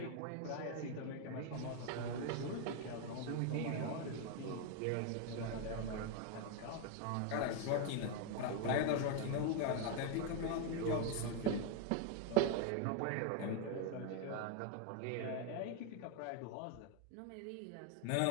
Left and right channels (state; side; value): different; both; correlation 0.00